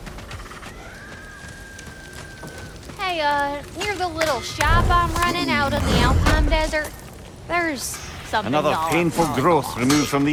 Near the little shop I'm running out in the Alpine Desert, there's something Another y'all painful probably growth lost. removed from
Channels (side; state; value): both; identical; correlation 1.00